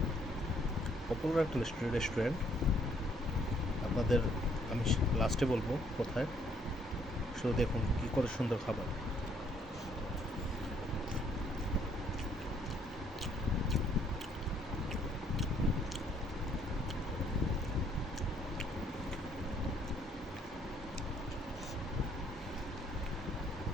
পপুলার একটা রেস্টুরেন্ট। আপনাদের আমি লাস্টে বলবো কোথায়, শুধু দেখুন কী করে সুন্দর খাবার।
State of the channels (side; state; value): both; normal; correlation 0.67